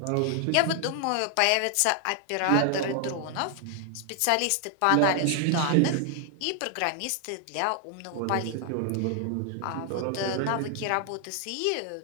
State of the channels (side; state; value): both; different; correlation 0.00